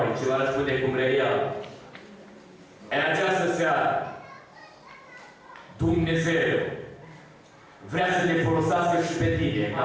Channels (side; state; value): both; identical; correlation 1.00